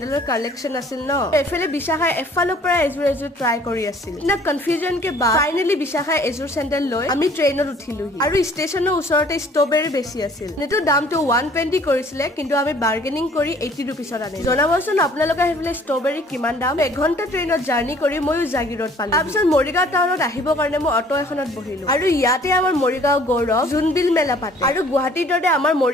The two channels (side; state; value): both; normal; correlation 0.55